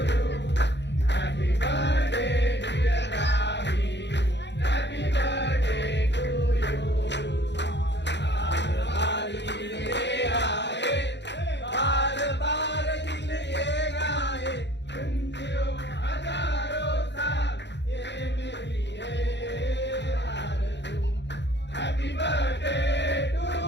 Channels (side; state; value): right; late; 0.51 ms